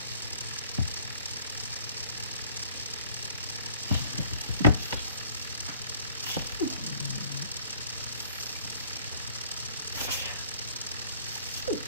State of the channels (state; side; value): inverted; both; correlation -0.55